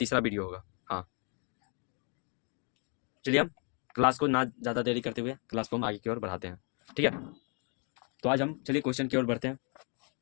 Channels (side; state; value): right; quieter; 37.5 dB